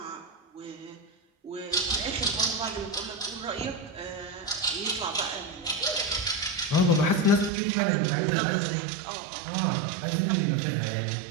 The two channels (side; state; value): left; drops out; at 7.5 s